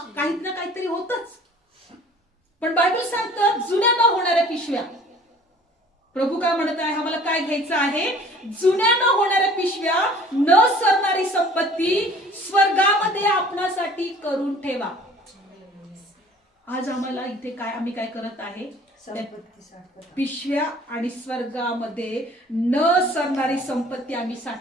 काही ना काहीतरी होतच. पण बायबल सांगतं जुन्या न होणाऱ्या पिशव्या. प्रभू काय म्हणत आहे, आम्हाला काय घ्यायचं आहे? जुन्या न होणाऱ्या पिशव्या, न सरणारी संपत्ती स्वर्गामध्ये आपणासाठी करून ठेवा. आज आम्हाला इथे काय, आम्ही काय करत आहे? पिशव्या आणि स्वर्गामध्ये न सरणारी संपत्ती आम्ही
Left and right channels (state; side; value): normal; both; correlation 0.50